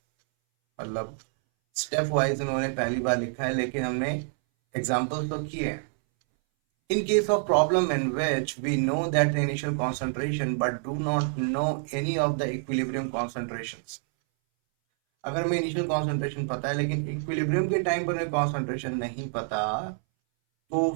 मतलब स्टेप वाइज उन्होंने पहली बार लिखा है, लेकिन हमने एग्जाम्पल्स तो किए हैं। In case of problem in which we know that the initial concentration but do not know any of the equilibrium concentrations, अगर हमें इनिशियल कॉन्सेंट्रेशन पता है लेकिन इक्विलिब्रियम के टाइम पर हमें कॉन्सेंट्रेशन नहीं पता, तो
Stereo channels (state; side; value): silent; left; 60 dB below the other